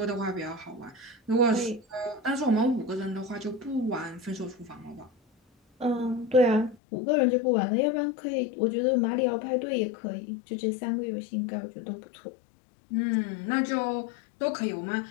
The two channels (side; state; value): right; drops out; at 6.8 s